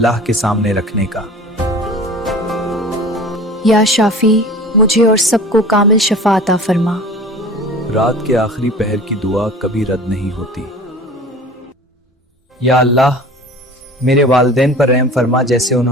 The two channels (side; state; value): both; normal; correlation 0.40